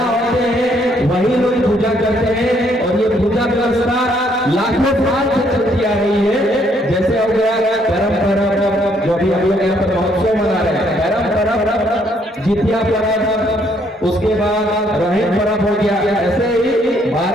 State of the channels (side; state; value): both; normal; correlation 0.69